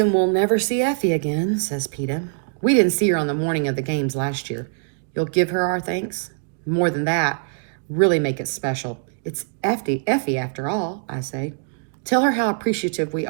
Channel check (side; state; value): left; silent; digital silence